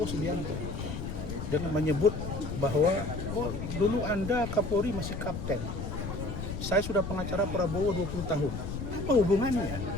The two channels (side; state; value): left; noise; rumble, 5 dB below the sound